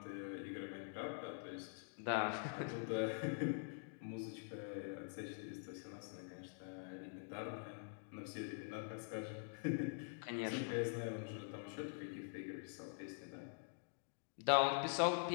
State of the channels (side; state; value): right; silent; digital silence